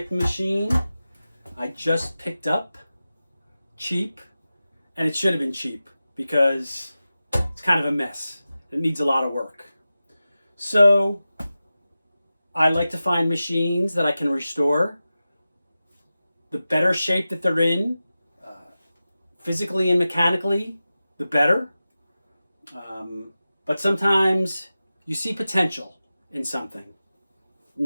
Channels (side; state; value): both; inverted; correlation -0.94